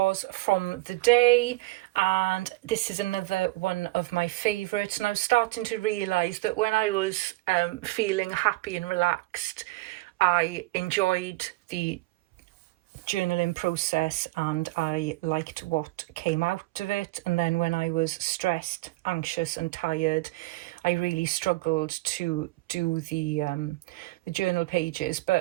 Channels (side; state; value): left; quieter; 21.4 dB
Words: from the day, and this is another one of my favourites, and I was starting to realise that when I was feeling happy and relaxed, I enjoyed the journaling process and I liked what came out of it. And then when I was stressed, anxious and tired, I really struggled to do the journal pages.